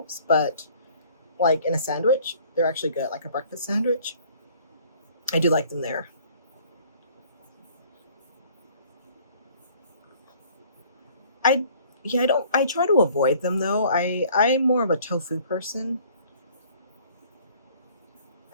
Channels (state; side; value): inverted; both; correlation -0.55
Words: but in a sandwich. They're actually good, like a breakfast sandwich. I do like them there. I try to avoid them though. I'm more of a tofu person.